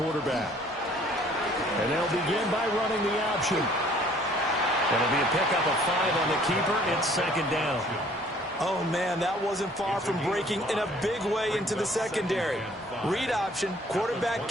And they'll begin by running the option. It'll be a pickup of 5 on the keeper. It's second down. Oh, man, that wasn't far from breaking in a big way into the secondary. Read option, quarterback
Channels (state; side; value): normal; both; correlation 0.57